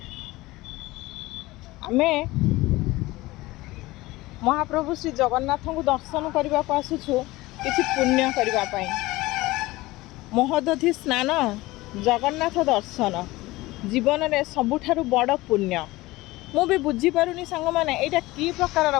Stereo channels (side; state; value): right; quieter; 19.6 dB